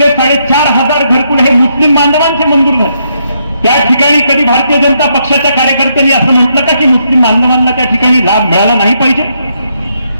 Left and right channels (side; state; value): both; inverted; correlation -0.76